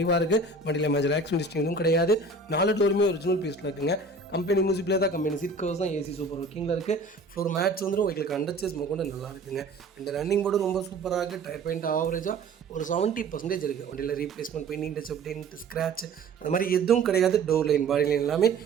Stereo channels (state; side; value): quieter; left; 3.4 dB